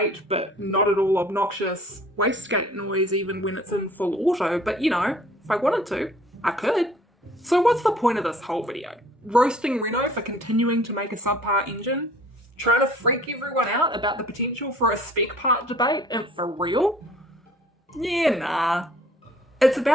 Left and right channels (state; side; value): normal; both; correlation 0.53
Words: but not at all obnoxious wastegate noise even when it's in full auto, but you know, if I wanted to, I could. So what's the point of this whole video? Roasting Renault for continuing to make a subpar engine? Trying to freak everyone out about the potential for a spec part debate, and for real? Yeah, nah. It's